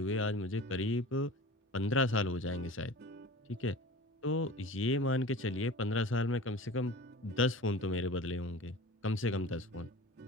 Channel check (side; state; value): both; normal; correlation 0.38